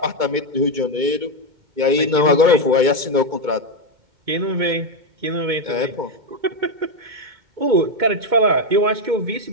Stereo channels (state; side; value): late; left; 2.1 ms